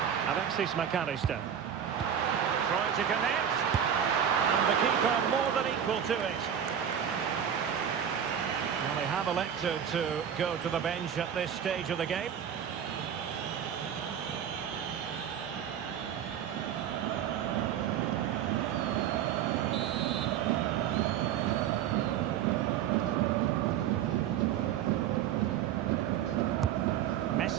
Alexis McAllister. Trying to connect. And the keeper more than equal to it. Well, they have elected to go to the bench at this stage of the game.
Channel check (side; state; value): left; quieter; 9.0 dB